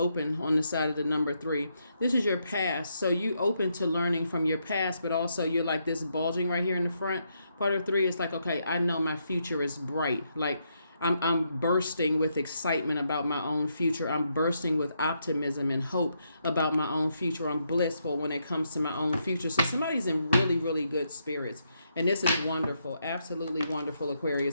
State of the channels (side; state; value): both; inverted; correlation -0.78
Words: on the side of the number 3. This is your past. So you open to learning from your past, but also you're like this bulging right here in the front. Part of 3 is like, okay, I know my future is bright. Like, I'm bursting with excitement about my own future. I'm bursting with optimism and hope about my own future. I'm blissful when it comes to my own future. So somebody's in really, really good spirits. And this is wonderful. Absolutely wonderful,